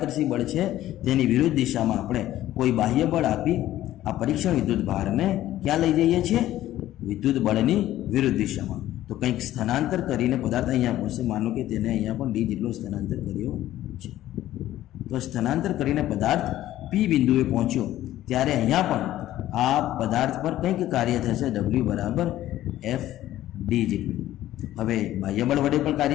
બળ છે તેની વિરુદ્ધ દિશામાં આપણે કોઈ બાહ્ય બળ આપી આ પરીક્ષણ વિદ્યુત ભારને ક્યાં લઈ જઈએ છીએ? વિદ્યુત બળની વિરુદ્ધ દિશામાં. તો કંઈક સ્થાનાંતર કરીને પદાર્થ અહીંયા પહોંચશે. માનો કે તેને અહીંયા પણ ડી જેટલો સ્થાનાંતર કર્યો છે. તો સ્થાનાંતર કરીને પદાર્થ પી બિંદુએ પહોંચ્યો ત્યારે અહીંયા પણ આ પદાર્થ પર કંઈક કાર્ય થશે, W બરાબર F ડી જેટલું. હવે બાહ્ય બળ વડે પણ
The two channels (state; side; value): quieter; right; 13.9 dB